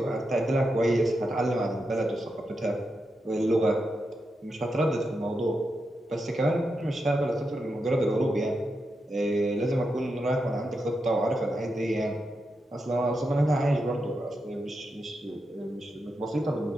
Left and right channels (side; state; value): both; normal; correlation 0.86